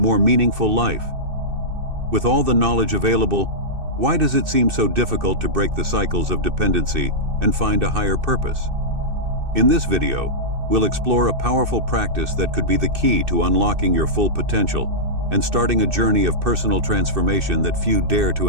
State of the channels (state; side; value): late; left; 2.6 ms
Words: meaningful life? With all the knowledge available, why does it seem so difficult to break the cycles of dependency and find a higher purpose? In this video, we'll explore a powerful practice that could be the key to unlocking your full potential and starting a journey of personal transformation that few dare